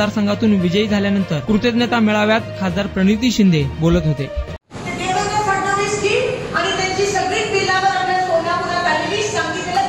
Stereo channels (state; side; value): identical; both; correlation 1.00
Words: विजयी झाल्यानंतर कृतज्ञता मेळाव्यात खासदार प्रणिती शिंदे बोलत होते. देवेंद्र फडणवीस जी आणि त्यांची सगळी पिलावर आपल्या सोलापुरात आलेली सांगितलेलं